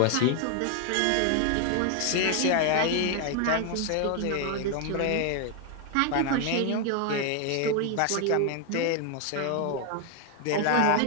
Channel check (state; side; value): different; both; correlation 0.00